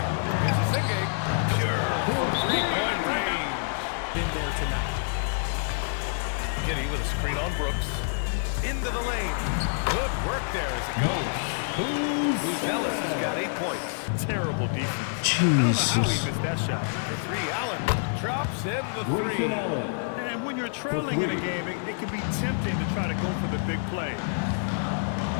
Here's Asenge. Pure from 3-point range. Been there tonight. Giddy with a screen on Brooks. Into the lane. Good work there as it goes. Ellis has got 8 points. Terrible defense. I don't know how he Jesus. missed that shot. The 3, Allen drops in the 3. And when you're trailing in a game, it can be tempting to try to go for the big play.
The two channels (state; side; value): silent; right; 60 dB below the other